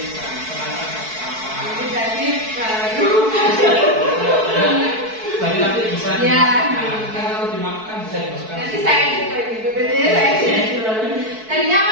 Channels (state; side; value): late; left; 4.6 ms